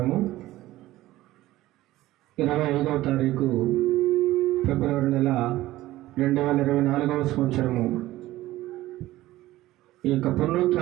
25వ తారీఖు ఫిబ్రవరి నెల 2024వ సంవత్సరము. ఈ యొక్క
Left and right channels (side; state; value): left; quieter; 16.3 dB